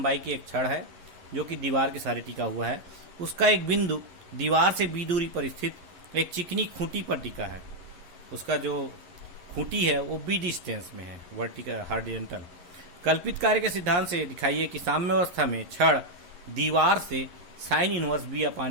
की एक छड़ है जो कि दीवार के सहारे टिका हुआ है। उसका एक बिंदु दीवार से b दूरी पर स्थित एक चिकनी खूंटी पर टिका है। उसका जो खूंटी है वो b डिस्टेंस में है, वर्टिकल हॉरिजॉन्टल। कल्पित कार्य के सिद्धांत से दिखाइए कि साम्य अवस्था में छड़ दीवार से साइन इनवर्स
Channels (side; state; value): left; late; 11 ms